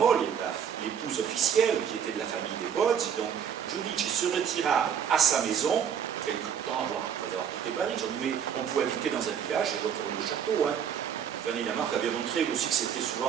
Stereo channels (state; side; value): quieter; left; 8.2 dB